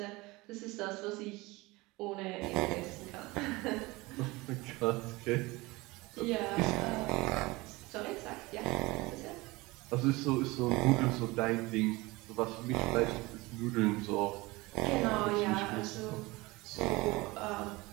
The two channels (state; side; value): quieter; left; 22.3 dB